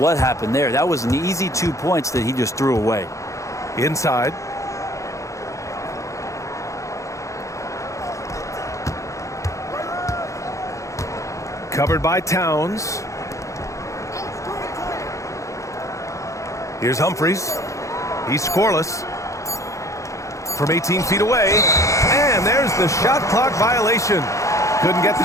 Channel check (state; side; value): late; right; 0.15 ms